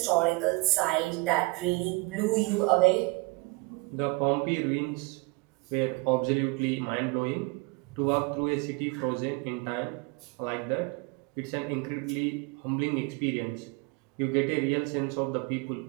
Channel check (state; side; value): quieter; left; 27.0 dB